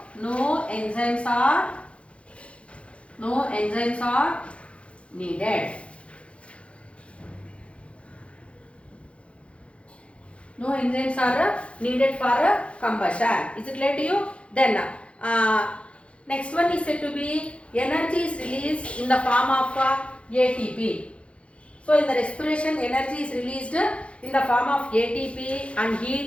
no enzymes are needed. No enzymes are needed for combustion. Is it clear to you? Then next one is said to be energy is released in the form of ATP. So in the respiration, energy is released in the form of ATP and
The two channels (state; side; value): late; right; 0.061 ms